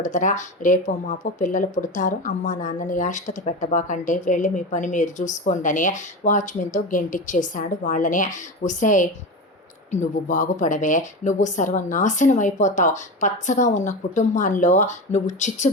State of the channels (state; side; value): normal; both; correlation 0.24